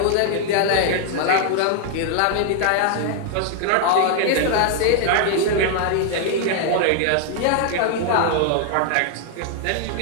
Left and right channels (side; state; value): both; different; correlation 0.00